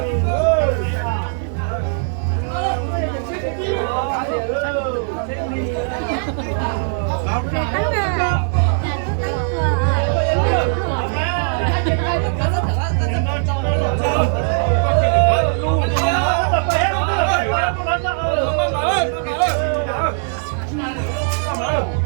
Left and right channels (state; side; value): silent; left; digital silence